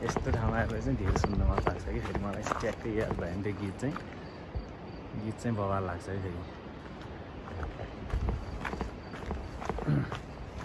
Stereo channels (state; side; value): identical; both; correlation 1.00